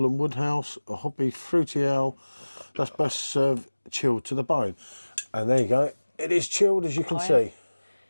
and Woodhouse, a hoppy fruity ale that's best served chilled to the bone. And there you go. It is chilled, as you can see.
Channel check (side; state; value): both; inverted; correlation -1.00